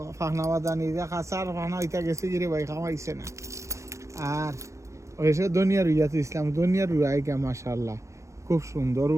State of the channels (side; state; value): left; late; 0.15 ms